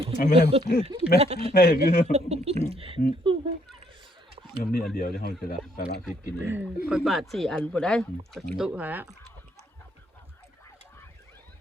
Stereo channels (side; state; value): both; normal; correlation 0.69